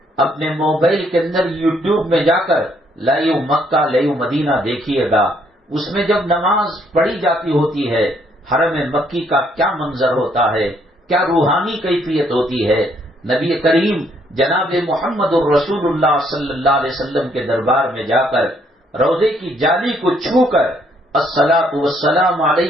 اپنے موبائل کے اندر یوٹیوب میں جا کر لائیو مکہ لائیو مدینہ دیکھیے گا. اس میں جب نماز پڑھی جاتی ہوتی ہے، حرم مکی کا کیا منظر ہوتا ہے، کیا روحانی کیفیت ہوتی ہے. نبی کریم جناب محمد الرسول اللہ صلی اللہ علیہ وسلم کے دربار میں جا کر روضے کی جالی کو چھو کر الصلاۃ والسلام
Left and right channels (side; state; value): both; normal; correlation 0.69